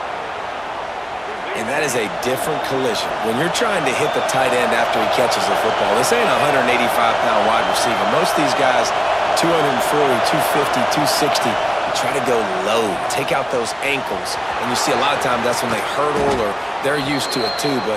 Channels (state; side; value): identical; both; correlation 1.00